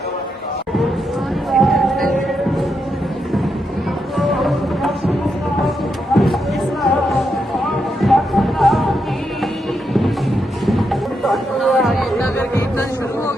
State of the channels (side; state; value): both; normal; correlation 0.83